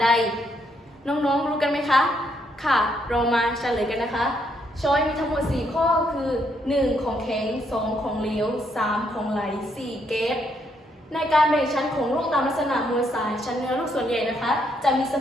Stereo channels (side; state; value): both; normal; correlation 0.74